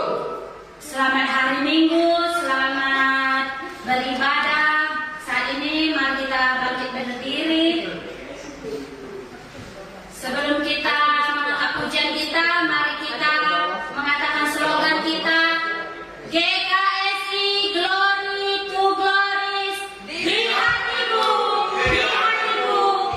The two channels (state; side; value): identical; both; correlation 1.00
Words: Selamat hari Minggu, selamat beribadah. Saat ini mari kita bangkit berdiri. Sebelum kita mengangkat pujian kita, mari kita mengatakan slogan kita, GKSI Glory to Glories. Di hatimu, di hatimu,